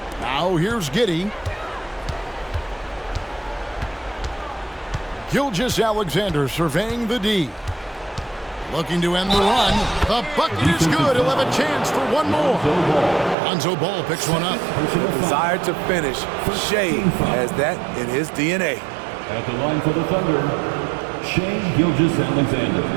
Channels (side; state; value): left; drops out; at 13.4 s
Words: Now here's Giddey. Gilgeous-Alexander surveying the D. Looking to end the run. The bucket is good. He'll have a chance for one more. Lonzo Ball picks one up. Desire to finish. Shea has that in his DNA. At the line for the Thunder, Shea Gilgeous-Alexander.